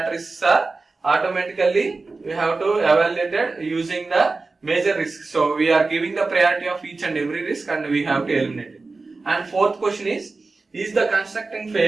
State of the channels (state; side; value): quieter; left; 3.7 dB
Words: risks are automatically we have to evaluate it using the major risks. So we are giving the priority of each and every risk and we have to eliminate it. And fourth question is the constructing